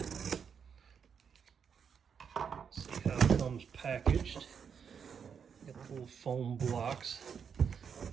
Packaged. Got the little foam blocks.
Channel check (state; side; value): quieter; left; 6.9 dB